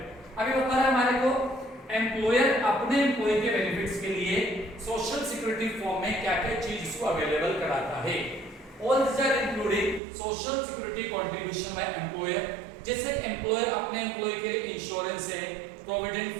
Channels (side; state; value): left; drops out; at 10.0 s